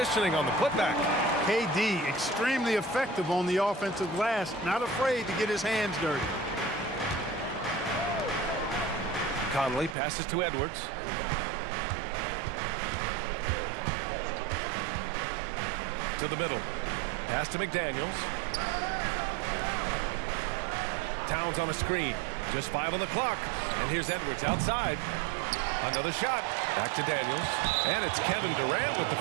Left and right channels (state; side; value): drops out; left; at 10.0 s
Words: on the putback. KD, extremely effective on the offensive glass. Not afraid to get his hands dirty. Conley passes to Edwards. To the middle. Pass to McDaniels. Towns on a screen. Just 5 on the clock. And here's Edwards outside. Another shot. Back to Daniels. And it's Kevin Durant with the